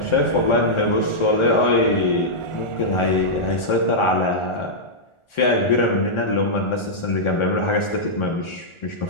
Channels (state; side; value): late; right; 1.4 ms